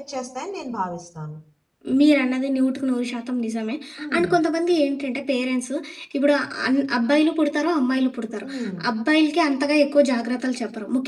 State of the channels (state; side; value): identical; both; correlation 1.00